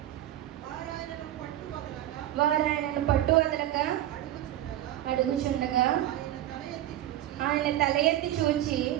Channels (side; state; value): left; quieter; 13.3 dB